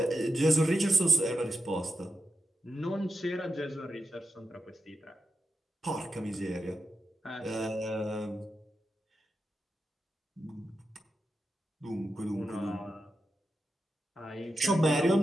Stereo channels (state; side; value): normal; both; correlation 0.89